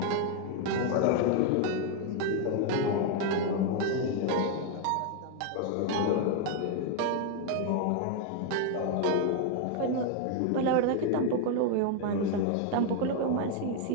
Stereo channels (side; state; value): both; different; correlation 0.01